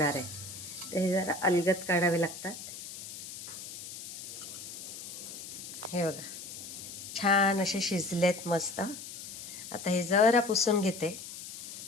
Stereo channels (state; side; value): noise; left; hiss, 11 dB below the sound